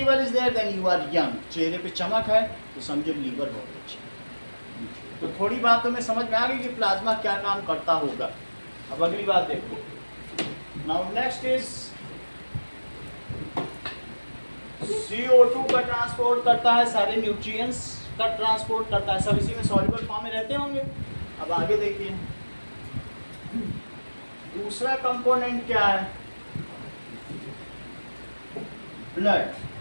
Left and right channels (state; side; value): inverted; both; correlation -1.00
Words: is there then you are young. चेहरे पे चमक है तो समझो लीवर बहुत अच्छा है। तो थोड़ी बात तो मैं समझ में आ गई कि प्लाज्मा क्या काम करता होगा। अब अगली बात देखो। नाउ नेक्स्ट इज CO2 का ट्रांसपोर्ट करता है, सारे न्यूट्रिएंट्स का ट्रांसपोर्ट करता है, सब इसी में सॉल्युबल फॉर्म में रहते होंगे। अब आगे देखिए दूसरा कंपोनेंट क्या है? Blood,